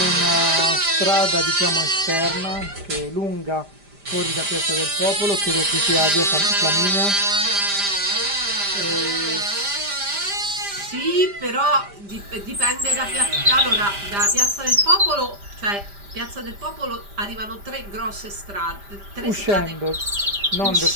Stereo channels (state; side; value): late; left; 5.0 ms